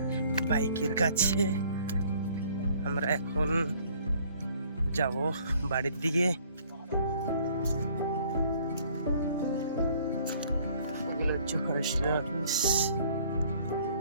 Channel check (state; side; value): inverted; both; correlation -0.58